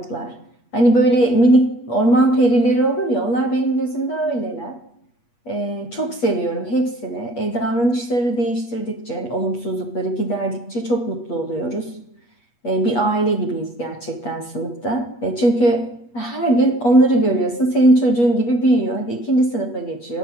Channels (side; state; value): right; late; 8.4 ms